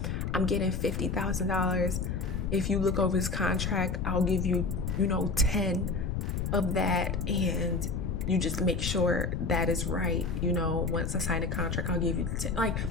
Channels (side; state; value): left; noise; rumble, 1 dB below the sound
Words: I'm getting $50,000. If you look over this contract, I'll give you, 10 of that. And you just make sure that is right. Once I sign a contract, I'll give you 10. Like